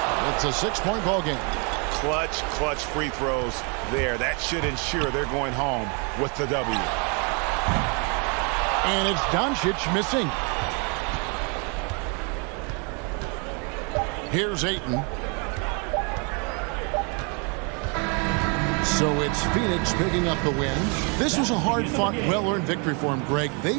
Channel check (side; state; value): left; quieter; 34.9 dB